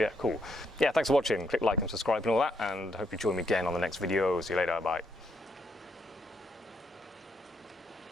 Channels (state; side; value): normal; both; correlation 0.76